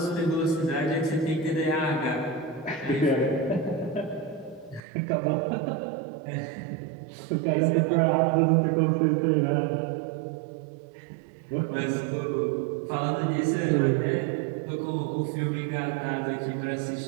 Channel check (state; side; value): drops out; left; at 4.8 s